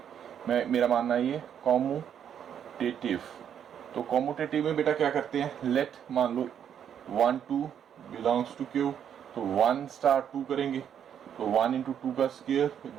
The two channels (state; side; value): quieter; left; 8.9 dB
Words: मेरा मानना ये कॉम्यूटेटिव। तो कॉम्यूटेटिव में बेटा क्या करते हैं, लेट मान लो 1 2 बिलोंग्स टू Q, तो 1 स्टार 2 करेंगे, तो 1 इंटू 2 का square